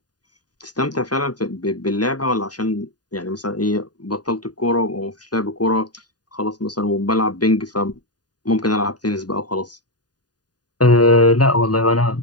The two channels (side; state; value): right; late; 0.69 ms